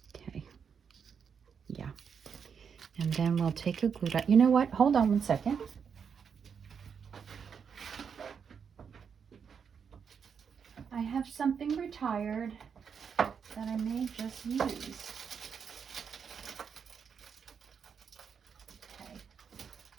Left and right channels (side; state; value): left; quieter; 6.7 dB